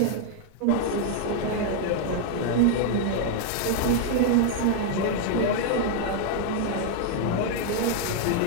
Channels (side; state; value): both; different; correlation 0.00